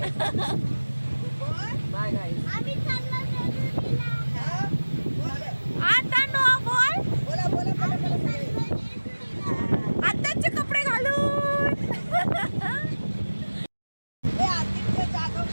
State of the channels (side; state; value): both; inverted; correlation -1.00